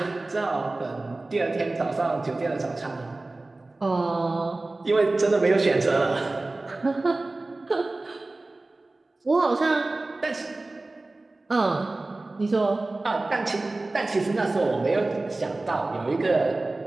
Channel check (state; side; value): quieter; left; 3.1 dB